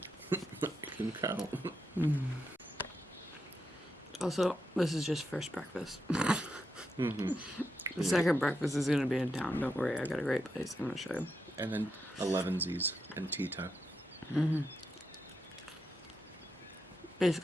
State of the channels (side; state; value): both; normal; correlation 0.84